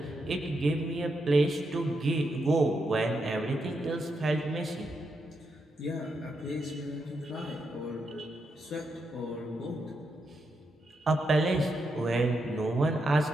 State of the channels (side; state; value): both; normal; correlation 0.83